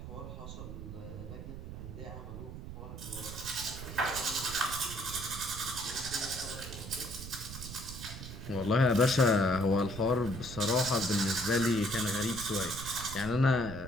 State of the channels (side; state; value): right; noise; rumble, 10 dB below the sound